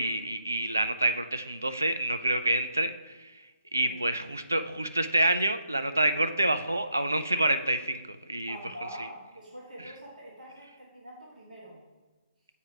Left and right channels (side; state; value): both; inverted; correlation -0.77